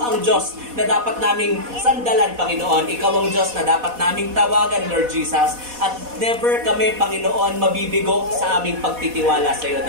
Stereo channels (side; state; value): left; late; 4.1 ms